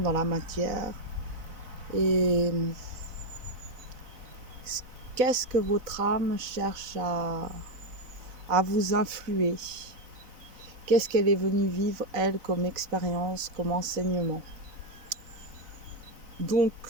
la matière et qu'est-ce que votre âme cherche à vous influer. Qu'est-ce qu'elle est venue vivre elle comme expérience, comme enseignement. Donc,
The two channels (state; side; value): late; left; 4.0 ms